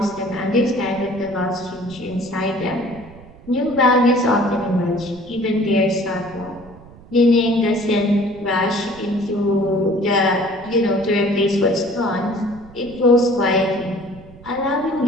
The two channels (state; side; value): noise; right; rumble, 21 dB below the sound